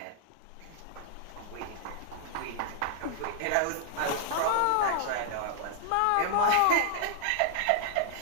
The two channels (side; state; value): both; different; correlation -0.01